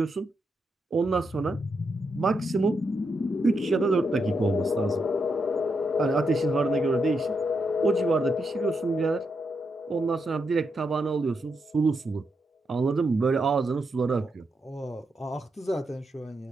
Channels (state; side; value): normal; both; correlation 0.82